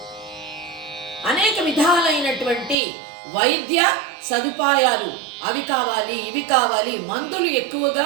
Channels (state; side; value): drops out; left; at 2.8 s